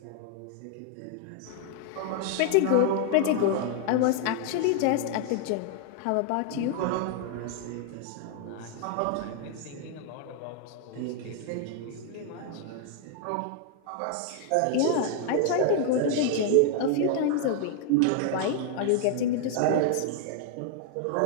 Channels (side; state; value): both; different; correlation 0.00